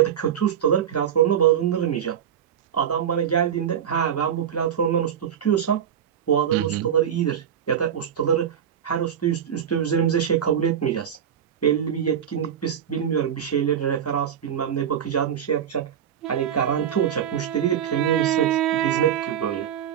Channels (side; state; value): left; quieter; 9.1 dB